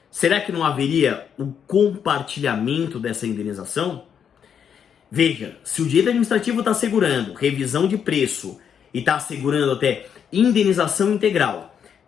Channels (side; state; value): right; quieter; 7.9 dB